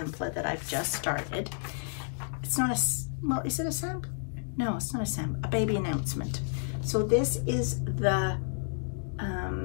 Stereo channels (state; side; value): silent; right; digital silence